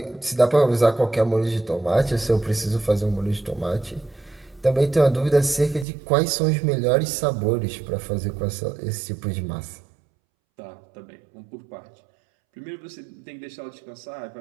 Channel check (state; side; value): drops out; left; at 5.9 s